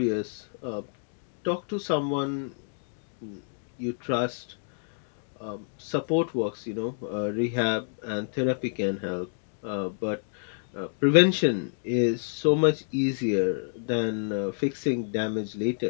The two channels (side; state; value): right; silent; digital silence